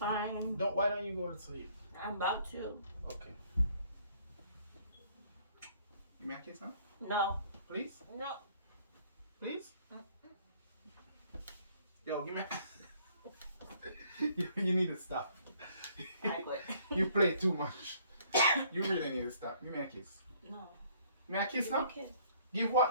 Why don't you go to sleep? I'm about to. Okay. You may I kiss now? No. Please? No. Please? Yo, give me you need to stop. I quit. You play too much. You really need to stop. Give me a kiss. No. May I kiss Give now? me a kiss. Give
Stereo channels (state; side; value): inverted; both; correlation -0.61